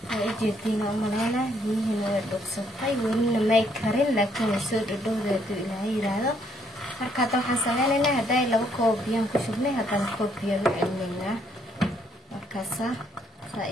oo jeedina umaleena biyihiina way dhuuqsatay welina may karin laakiin soo dhadhowdeedu ilaahay yiraahdo marka waxaan sameynaynaa haday 2 koob biyo ku shubnay haddana koob biyo u celinaynaa markaasa saa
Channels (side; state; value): both; normal; correlation 0.70